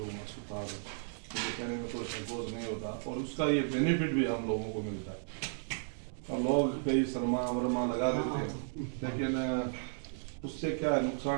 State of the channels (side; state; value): left; silent; digital silence